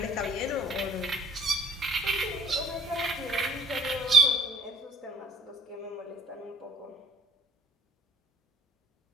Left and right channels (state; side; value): normal; both; correlation 0.55